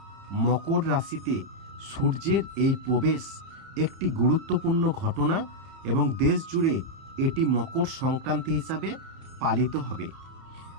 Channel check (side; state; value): left; late; 30 ms